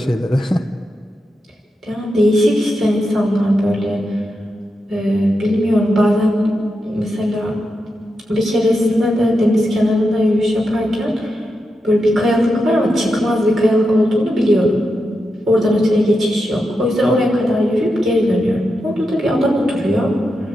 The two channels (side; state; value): both; normal; correlation 0.87